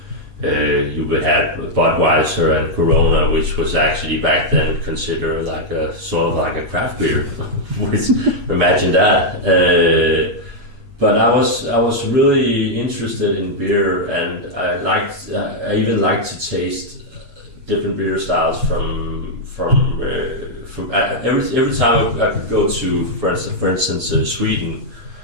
you would have Budweiser and Corona, which was actually back then considered like a sort of like a craft beer. Imagine that. But I was really interested in beer, and I even liked to taste different beer styles from every time I could go to, for instance, Sweden.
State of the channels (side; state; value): left; late; 8.3 ms